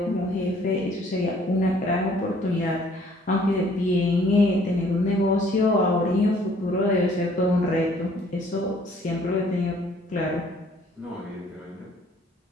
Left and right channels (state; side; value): normal; both; correlation 0.59